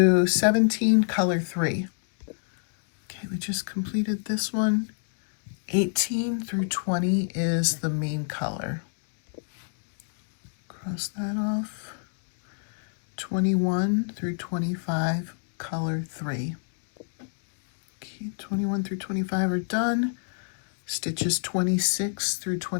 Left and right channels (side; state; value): right; silent; digital silence